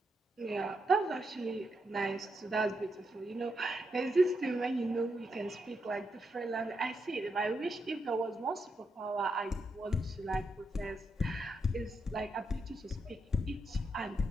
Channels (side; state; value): both; normal; correlation 0.82